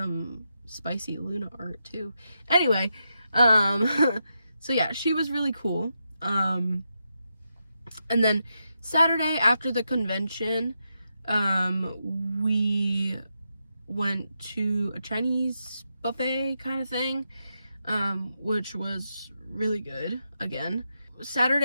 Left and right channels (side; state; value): both; inverted; correlation -0.85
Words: spicy Luna art too. Anyway, so yeah, she was really cool. And then Saturday after the convention, we went to a Chinese buffet kind of thing, which was really good again.